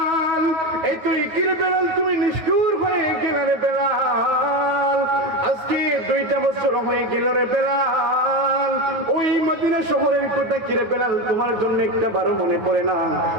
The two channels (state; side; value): late; left; 9.4 ms